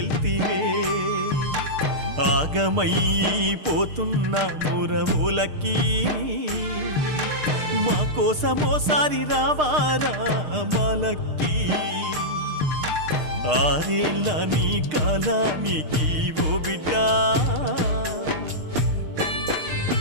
ఆగమైపోతున్నా మురములకి మా కోసమోసారి రావారా మాలక్కి ఆరేళ్ళ నీ కాలానికి ఓ బిడ్డ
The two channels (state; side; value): late; left; 6.6 ms